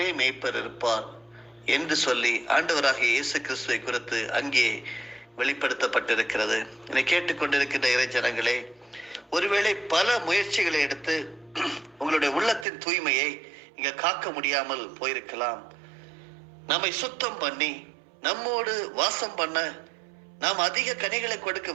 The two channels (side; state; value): left; drops out; at 12.7 s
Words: மேய்ப்பர் இருப்பார் என்று சொல்லி ஆண்டவராகிய இயேசு கிறிஸ்துவை குறித்து அங்கே வெளிப்படுத்தப்பட்டிருக்கிறது. என்னை கேட்டுக்கொண்டிருக்கின்ற இறை ஜனங்களே, ஒருவேளை பல முயற்சிகளை எடுத்து உங்களுடைய உள்ளத்தின் தூய்மையை இங்க காக்க முடியாமல் போயிருக்கலாம். நம்மை சுத்தம் பண்ணி நம்மோடு வாசம் பண்ண நாம் அதிக கனிகளை கொடுக்க